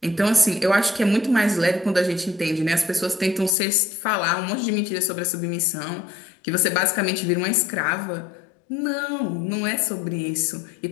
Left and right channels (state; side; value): drops out; right; at 3.5 s